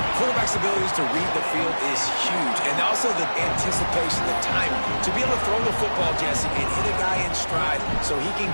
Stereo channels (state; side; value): inverted; both; correlation -1.00